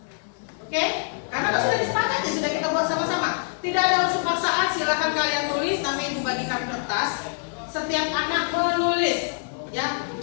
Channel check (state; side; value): silent; right; digital silence